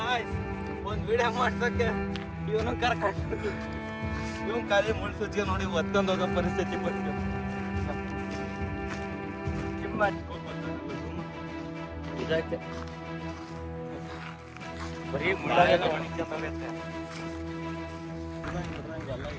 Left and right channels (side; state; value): both; identical; correlation 1.00